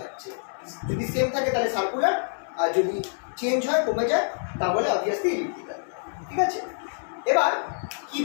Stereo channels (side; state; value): right; silent; digital silence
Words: যদি সেম থাকে তাহলে সার্কুলার, আর যদি চেঞ্জ হয় কমে যায় তাহলে অবভিয়াসলি ইলিপ্টিক্যাল। ঠিক আছে, এবার